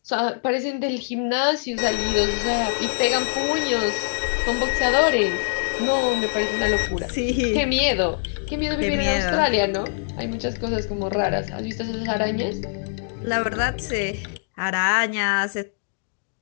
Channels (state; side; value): silent; right; digital silence